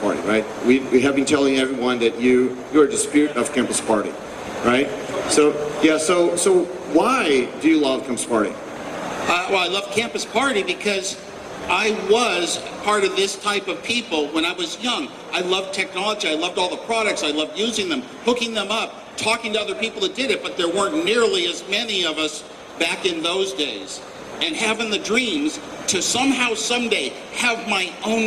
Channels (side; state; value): both; identical; correlation 1.00